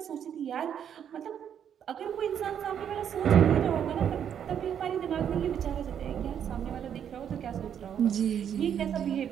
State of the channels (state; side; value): quieter; left; 8.8 dB